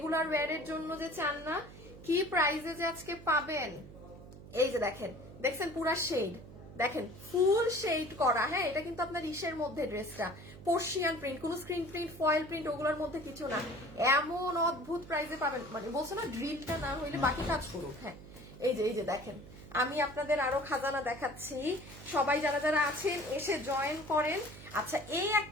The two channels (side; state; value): right; noise; hum, 16 dB below the sound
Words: ওয়্যারের জন্য যে চান না, কি প্রাইসে যে আজকে পাবেন। এই যে দেখেন, দেখছেন পুরা শেড, দেখেন ফুল শেড করা। হ্যাঁ, এটা কিন্তু আপনার ইসের মধ্যে ড্রেসটা পার্সিয়ান প্রিন্ট, কোনো স্ক্রিন প্রিন্ট ফয়েল প্রিন্ট ওগুলোর মধ্যে কিছু না। এমন অদ্ভুত প্রাইসে পাবেন, মানে বলছো না ড্রিলটা না হইলে বাকি কাজ করুক। হ্যাঁ, এই যে দেখেন, আমি আপনাদের আরো খাজানা দেখাচ্ছি। সবাই যারা যারা আছেন এসে জয়েন করেন। আচ্ছা, এই